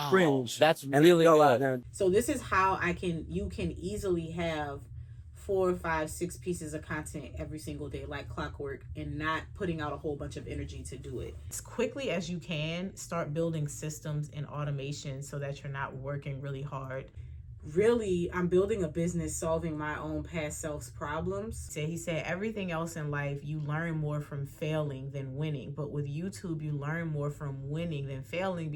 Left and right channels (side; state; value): both; identical; correlation 1.00